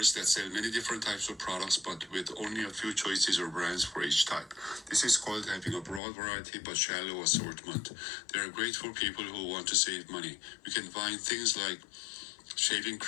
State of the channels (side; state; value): right; drops out; at 6.0 s